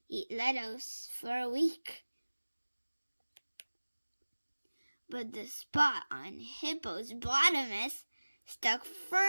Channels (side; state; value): both; inverted; correlation -1.00